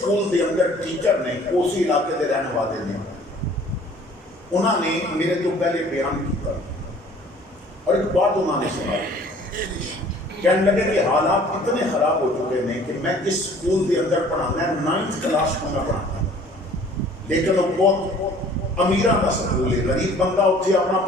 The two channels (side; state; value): both; normal; correlation 0.52